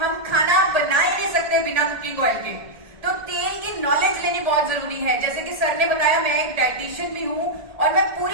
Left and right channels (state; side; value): late; left; 1.7 ms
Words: खाना बना ही नहीं सकते बिना कुकिंग ऑयल के। तो तेल की नॉलेज लेनी बहुत जरूरी है। जैसे कि सर ने बताया, मैं एक डाइटिशियन भी हूं और मैं